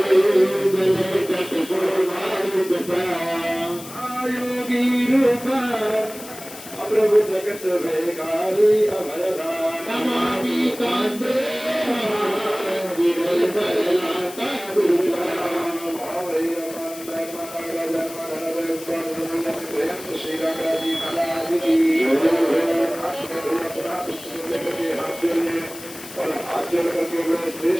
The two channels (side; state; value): left; noise; hiss, 14 dB below the sound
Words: प्रभु जगत भेगारी अभयदान नमामि कांते श्री रामराजी महाराज की। और हाथ जोड़ करके बड़े